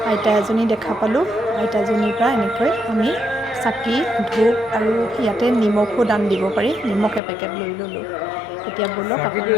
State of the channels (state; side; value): drops out; right; at 7.2 s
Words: আইতা এজনী দেখা পালোঁ। আইতাজনীৰ পৰা এনেকৈ আমি চাকি ধূপ আৰু ইয়াতে নিমখো দান দিব পাৰি, নিমখ এপেকেট লৈ ল'লোঁ। এতিয়া ব'লক